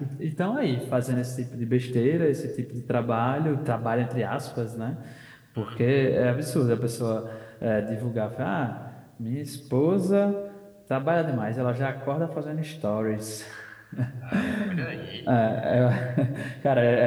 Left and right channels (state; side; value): identical; both; correlation 1.00